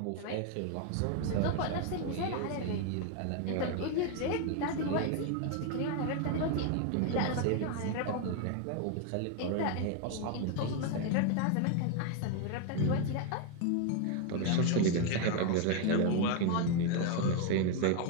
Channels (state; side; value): different; both; correlation 0.01